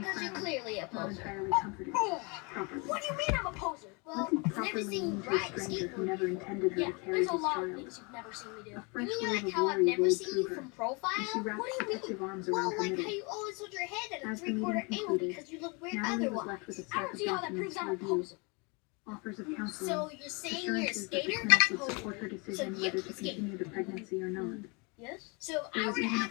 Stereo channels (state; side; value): quieter; right; 30.6 dB